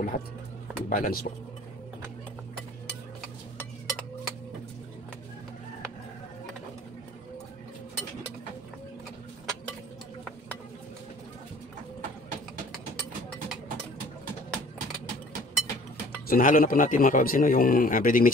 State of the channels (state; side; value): normal; both; correlation 0.51